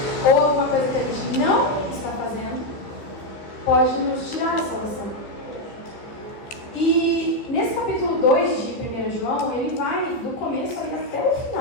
ou alguma coisa que a gente não está fazendo, pode nos tirar a salvação. E nesse capítulo 2 de 1 João, ele vai do começo ali até o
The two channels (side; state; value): right; late; 14 ms